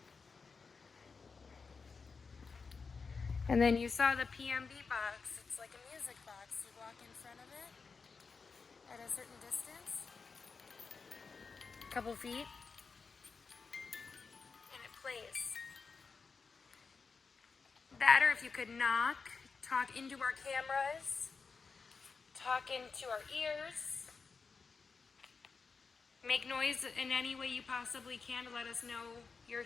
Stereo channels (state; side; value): quieter; right; 4.9 dB